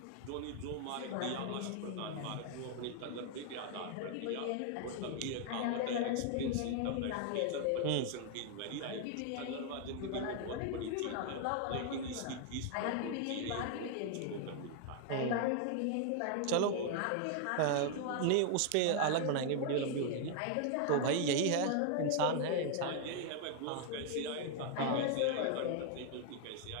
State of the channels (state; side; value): different; both; correlation 0.00